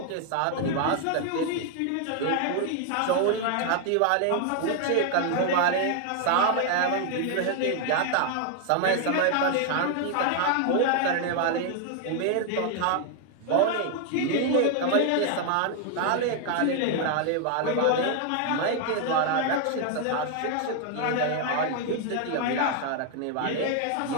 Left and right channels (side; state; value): both; different; correlation 0.00